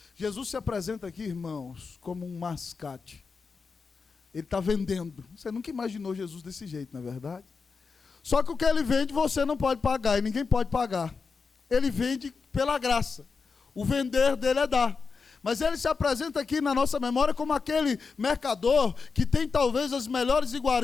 Jesus se apresenta aqui, irmãos, como um mascate. Ele está vendendo. Você nunca imaginou Jesus desse jeito, não é verdade? Só que o que ele vende você não pode pagar, e ninguém pode pagar. Ele vende pela graça. O vender dele é dar. Mas ele se apresenta aqui na nossa memória como aquele mercador que tem talvez as melhores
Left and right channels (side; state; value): right; quieter; 4.9 dB